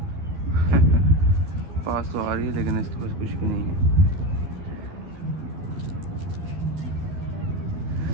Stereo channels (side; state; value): left; late; 13 ms